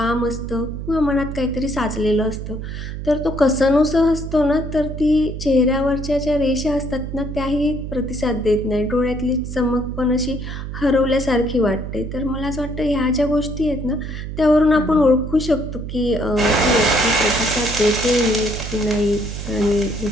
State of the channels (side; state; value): right; noise; hum, 7 dB below the sound